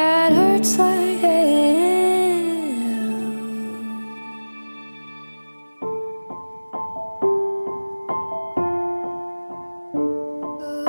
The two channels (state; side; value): inverted; both; correlation -1.00